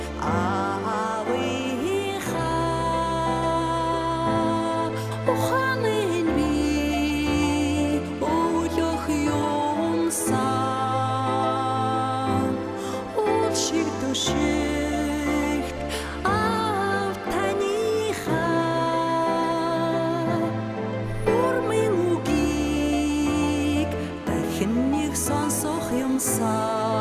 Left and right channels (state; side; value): identical; both; correlation 1.00